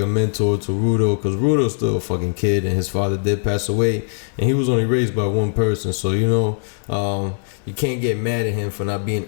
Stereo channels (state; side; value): silent; right; digital silence